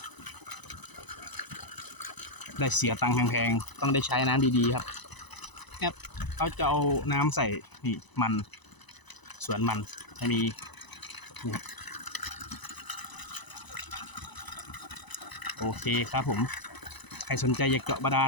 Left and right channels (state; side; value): late; right; 1.0 ms